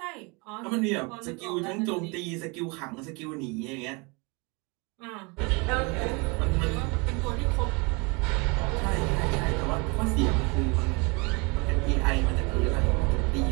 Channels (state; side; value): quieter; left; 29.4 dB